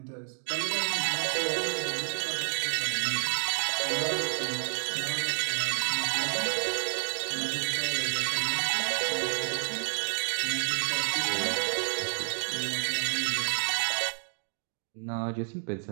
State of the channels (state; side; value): silent; left; digital silence